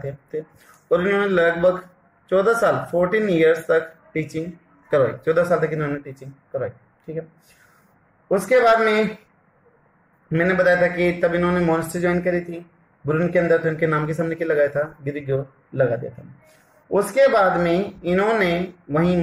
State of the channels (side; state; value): both; identical; correlation 1.00